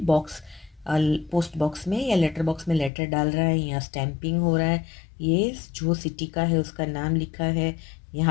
box, post box में या लेटर बॉक्स में लेटर डाल रहा है, यहाँ स्टैंपिंग हो रहा है, ये जो सिटी का है उसका नाम लिखा है,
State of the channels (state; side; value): drops out; right; at 2.9 s